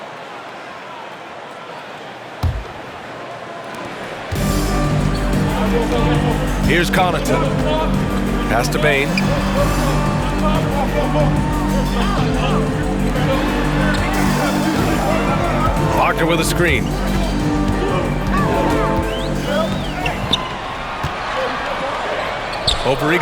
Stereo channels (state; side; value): identical; both; correlation 1.00